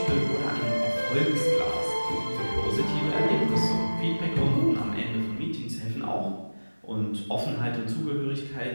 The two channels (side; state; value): both; inverted; correlation -1.00